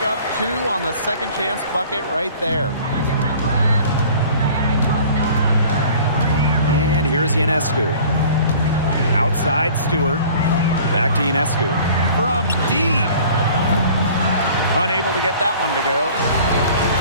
up 2 on the second chance bucket right there. And here's Ionescu. Outside, Stewart. Back to Ionescu. From deep. Unable to get that one to go.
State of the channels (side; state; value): both; inverted; correlation -0.48